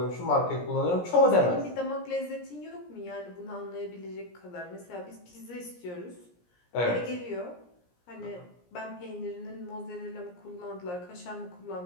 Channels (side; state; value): right; late; 17 ms